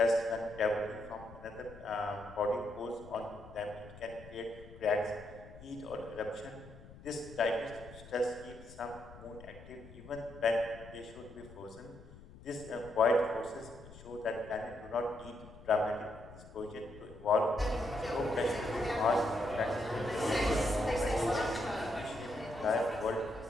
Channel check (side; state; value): left; noise; rumble, 18 dB below the sound